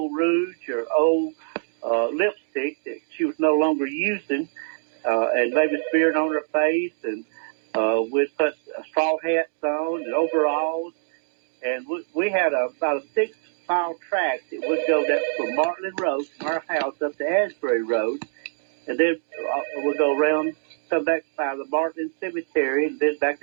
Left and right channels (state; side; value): silent; left; digital silence